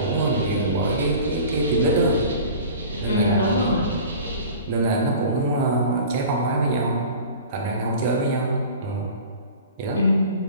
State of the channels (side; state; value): both; inverted; correlation -0.41